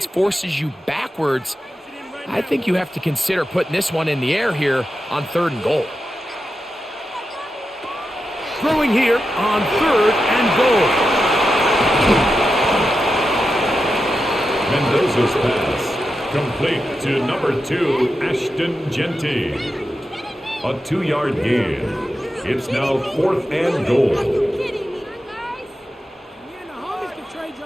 forces you backwards, I think you have to consider putting this one in the air here on third and goal. Throwing here on third and goal. Mendoza's pass. Complete to number 2, Ashton Genty. A 2-yard gain. It's now 4th and goal.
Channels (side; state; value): both; normal; correlation 0.89